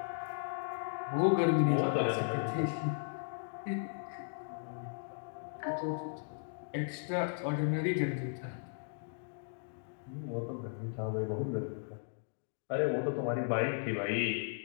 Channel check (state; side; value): silent; right; digital silence